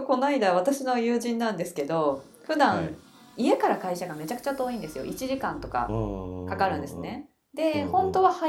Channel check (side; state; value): both; identical; correlation 1.00